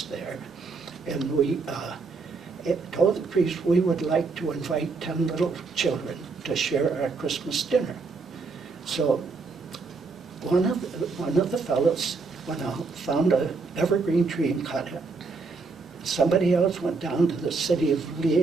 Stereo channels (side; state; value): left; quieter; 4.3 dB